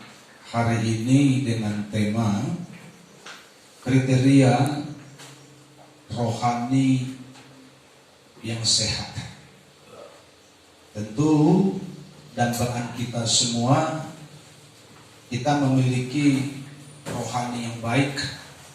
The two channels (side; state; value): both; identical; correlation 1.00